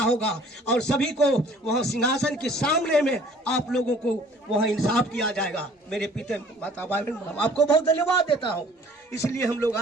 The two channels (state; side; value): normal; both; correlation 0.53